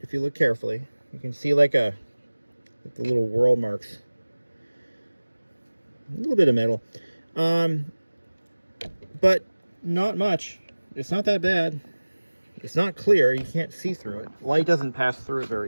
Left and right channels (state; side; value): inverted; both; correlation -1.00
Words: if you look carefully. You can see like the little whirl marks. A little bit of metal. But not much. It's not that bad. It's not clear. You can't see through it. Light doesn't pass through it